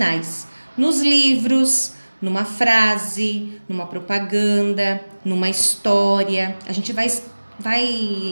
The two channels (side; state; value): both; inverted; correlation -1.00